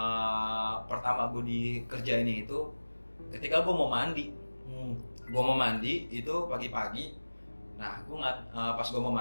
pertama gue di kerja ini itu ketika gue mau mandi. Gue mau mandi itu pagi-pagi. Nah, pas gue mau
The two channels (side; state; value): both; inverted; correlation -1.00